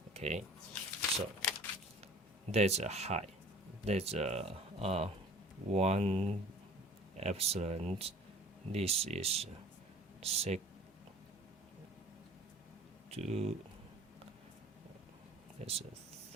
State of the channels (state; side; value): normal; both; correlation 0.46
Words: Okay, so there's a high, there's a 1 epsilon. This is sec 2, that's a